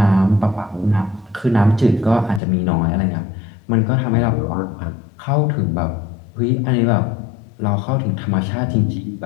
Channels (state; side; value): drops out; right; at 2.4 s